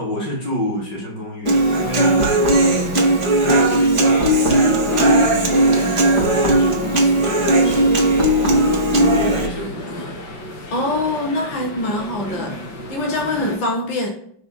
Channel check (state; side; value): late; right; 5.0 ms